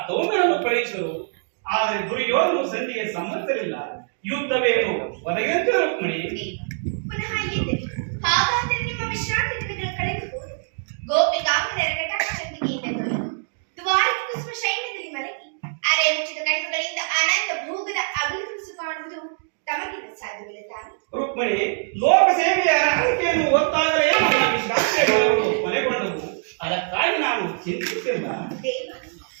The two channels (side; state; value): left; silent; digital silence